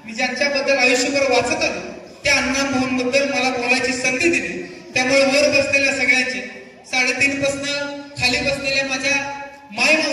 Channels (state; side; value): identical; both; correlation 1.00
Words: मी ज्यांच्याबद्दल आयुष्यभर वाचत आलो त्या अण्णाभाऊंबद्दल मला बोलायची संधी दिली. त्यामुळे वर बसलेल्या सगळ्यांचे 3.5 पासून खाली बसलेल्या माझ्या